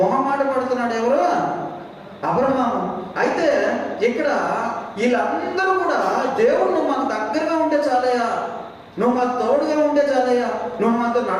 పడుతున్నాడు. ఎవరు? అబ్రహాము. అయితే ఇక్కడ వీళ్ళందరూ కూడా దేవుడు నువ్వు మాకు దగ్గరగా ఉంటే చాలయ్యా, నువ్వు మాకు తోడుగా ఉంటే చాలయ్యా, నువ్వు మాతో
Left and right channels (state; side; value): identical; both; correlation 1.00